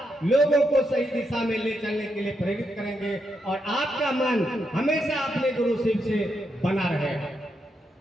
लोगों को सही दिशा में ले चलने के लिए प्रेरित करेंगे और आपका मन हमेशा अपने गुरु शिव से बना रहेगा।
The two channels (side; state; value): both; normal; correlation 0.82